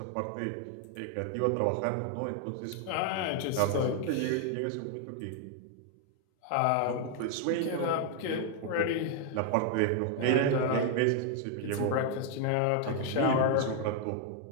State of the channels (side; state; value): both; different; correlation 0.00